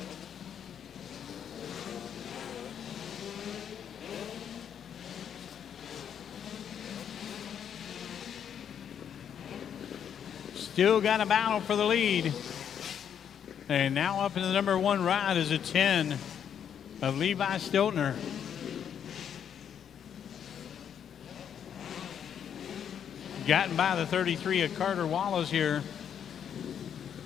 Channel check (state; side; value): quieter; right; 8.6 dB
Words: Still got a battle for the lead. And now up in the number one ride is a 10 of Levi Stiltner. Gotten by the 33 of Carter Wallace here.